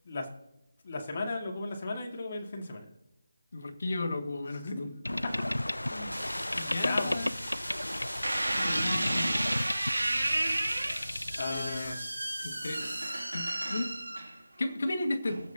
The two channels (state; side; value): inverted; both; correlation -0.95